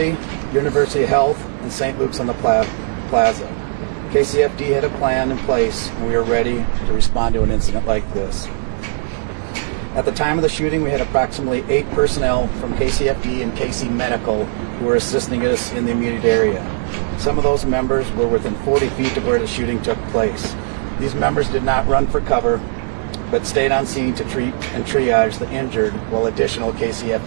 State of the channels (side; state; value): left; silent; digital silence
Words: University of Health, and St. Luke's on the Plaza. KCFD had a plan in place, and we were ready to respond to an incident like this. At the time of the shooting, we had approximately 8 personnel from KCFD and KC Medical who were assisting us in the immediate area. Some of those members were within 40 feet of where the shooting took place. These members did not run for cover, but stayed on scene to treat and triage the injured, while additional